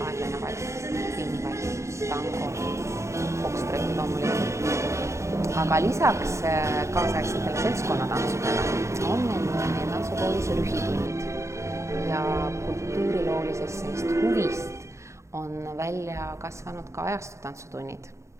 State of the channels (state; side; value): late; left; 0.14 ms